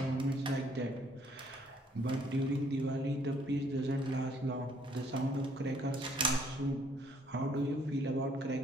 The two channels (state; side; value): normal; both; correlation 0.64